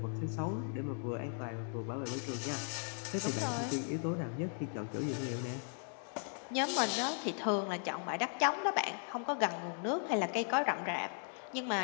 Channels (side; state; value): right; silent; 53 dB below the other